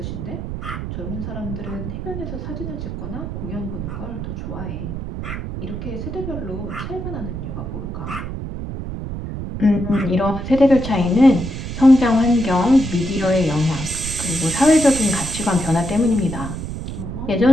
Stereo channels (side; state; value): right; noise; rumble, 6 dB below the sound